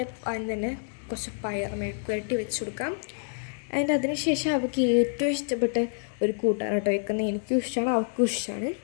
അതിന് തന്നെ കുറച്ച് പയർ മെഴുക്ക് പുരട്ടി വെച്ച് കൊടുക്കാം. അതിന് ശേഷം അവൾക്ക് ഏറ്റവും ഇഷ്ടപ്പെട്ട ഒരു കൂട്ടാണ് കേട്ടോ വെക്കുന്നത്. എനിക്കും ഇഷ്ടമാണ്, അവൾക്കും ഇഷ്ടമാണ്.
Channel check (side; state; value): right; silent; digital silence